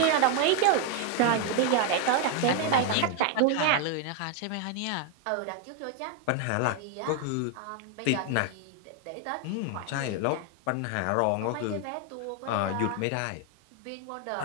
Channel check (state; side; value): different; both; correlation 0.01